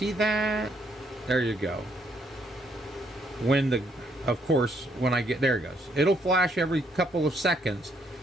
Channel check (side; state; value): both; normal; correlation 0.71